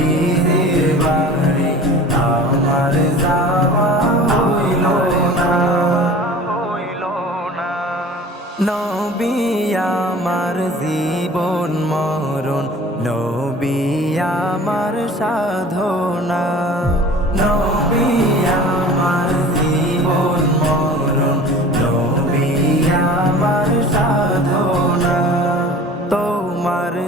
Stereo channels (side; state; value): both; normal; correlation 0.42